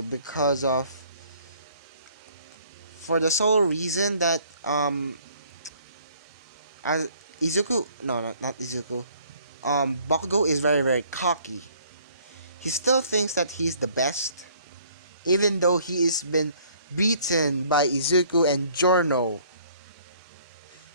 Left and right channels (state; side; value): inverted; both; correlation -0.59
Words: because of for the sole reason that as Izuku no not Izuku Bakugo is very very cocky. He still thinks that he's the best, even though he has been beaten by Izuku and Giorno.